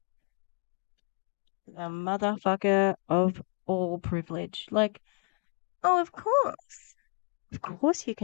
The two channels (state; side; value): quieter; right; 35.1 dB